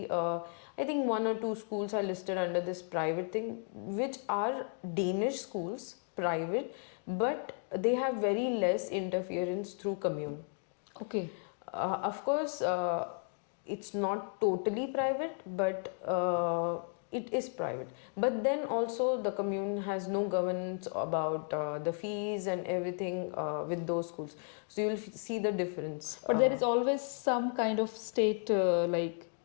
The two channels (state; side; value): silent; right; 55 dB below the other